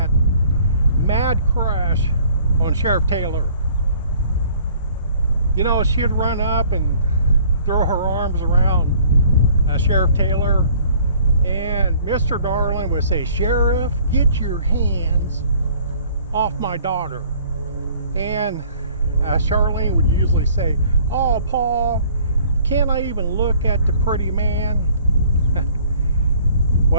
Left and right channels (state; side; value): inverted; both; correlation -0.55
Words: mad crush on Sheriff Taylor. You know, she'd run up and throw her arms around Sheriff Taylor, and Mr. Darling would say, "Sheriff, get your hands off my daughter." And Charlene would usually say, "Oh, Paul, can't I even look at the pretty man?"